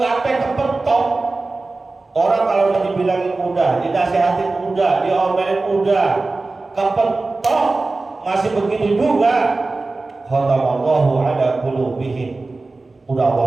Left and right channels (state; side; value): quieter; left; 3.4 dB